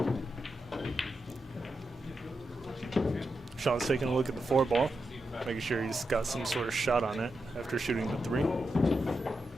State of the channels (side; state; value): both; normal; correlation 0.87